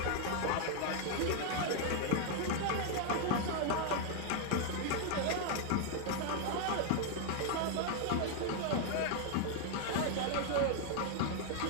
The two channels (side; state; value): both; different; correlation 0.00